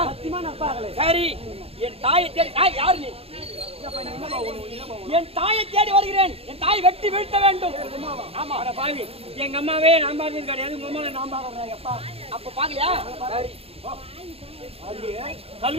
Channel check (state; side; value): late; left; 0.28 ms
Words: சத்தியமா நான் பாக்கல. சரி என் தாயை தேடி தாய் யாரு நீ? என் தாயை தேடி வருகிறேன். என் தாய் வெட்டி வீழ்த்த வேண்டும். ஆமா பாவி எங்க அம்மாவே நான் பார்த்தது கிடையாது. உங்க அம்மா நான் பாக்குறேன். அப்பா அப்ப பாக்கலையா? சரி